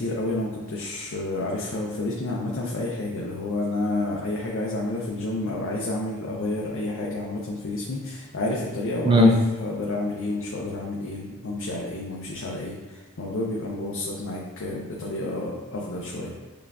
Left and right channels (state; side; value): normal; both; correlation 0.51